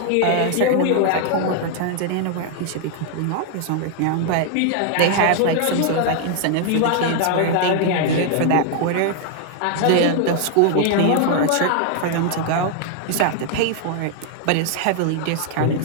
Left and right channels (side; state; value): both; different; correlation 0.00